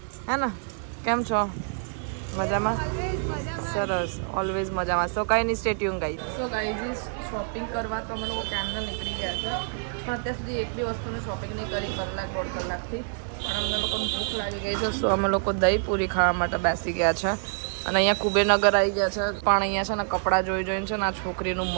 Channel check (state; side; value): silent; left; digital silence